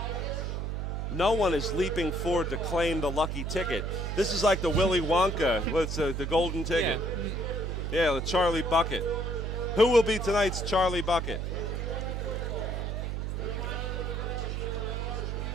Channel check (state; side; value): noise; right; hum, 2 dB below the sound